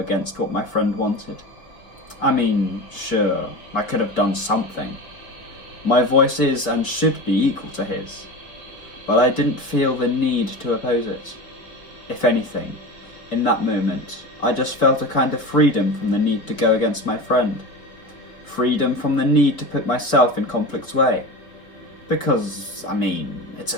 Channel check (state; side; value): late; right; 4.4 ms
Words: what my friend wanted. I mean, sure, I could have done something. My voice is and should be equal to his, but I didn't feel the need to oppose it. If anything, in that moment, I just felt a kind of freedom from the need to go against my friend. Freedom from the need to put myself in conflict's way. Because, I mean, it's